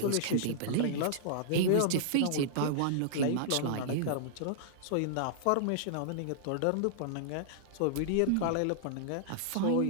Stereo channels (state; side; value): different; both; correlation -0.01